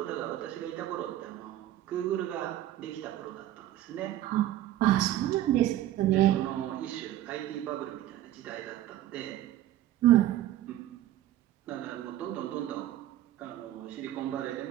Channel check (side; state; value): left; quieter; 13.4 dB